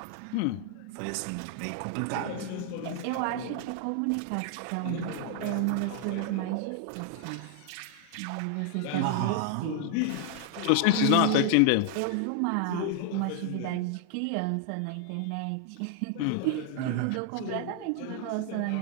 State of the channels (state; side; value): different; both; correlation 0.00